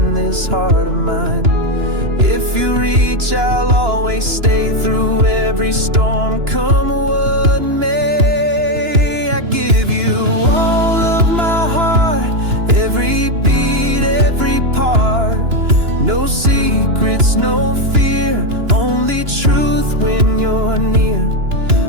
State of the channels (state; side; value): late; left; 2.9 ms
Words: this heart of mine. If you reach, I'll always stay through every storm, come what may. I give you all of my heart, every beat, every part. No secrets, no fear, only truth when you're near.